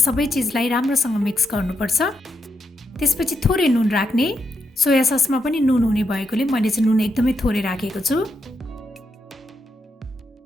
चिजलाई राम्रोसँग मिक्स गर्नुपर्छ। त्यसपछि थोरै नुन राख्ने। सोया ससमा पनि नुन हुने भएकोले मैले चाहिँ नुन एकदमै थोरै राखेको छु।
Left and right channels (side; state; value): both; normal; correlation 0.81